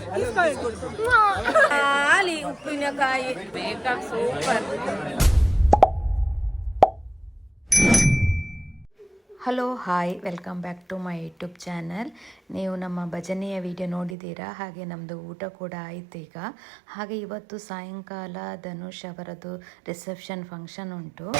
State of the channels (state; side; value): drops out; left; at 14.2 s